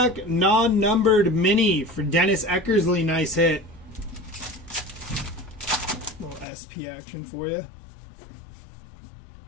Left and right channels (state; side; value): drops out; right; at 6.5 s